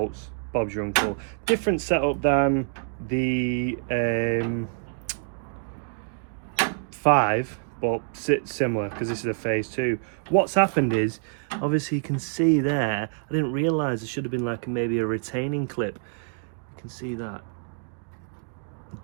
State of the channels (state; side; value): silent; left; digital silence